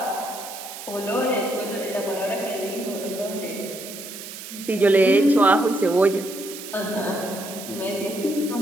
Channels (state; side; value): noise; right; hiss, 12 dB below the sound